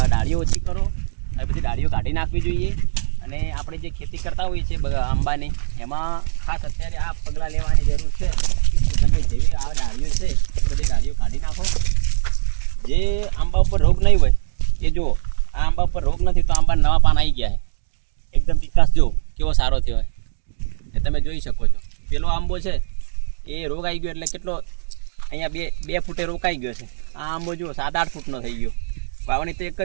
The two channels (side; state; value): left; silent; digital silence